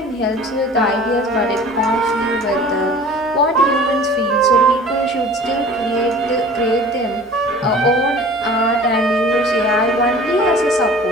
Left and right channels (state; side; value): normal; both; correlation 0.44